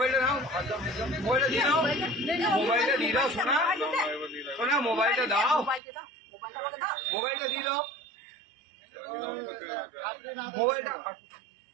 দাও, মোবাইলটা দিয়ে দাও, মোবাইলটা দিয়ে দাও, শোনা শোনা, মোবাইলটা দাও, মোবাইলটা দিয়ে দাও, মোবাইলটা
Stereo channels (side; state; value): left; drops out; at 5.8 s